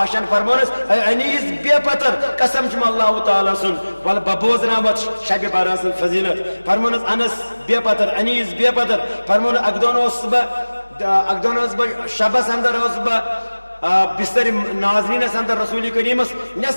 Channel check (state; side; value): inverted; both; correlation -1.00